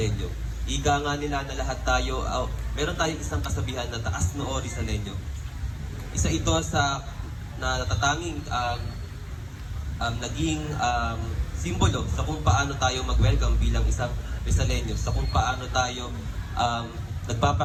Ika nga nila na lahat tayo, meron tayong isang kasabihan na taas noo Rizaleño. Isa ito sa natatanging naging simbolo sa kung paano tayo mag-welcome bilang isang Rizaleño, sa kung paano tayo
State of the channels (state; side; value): identical; both; correlation 1.00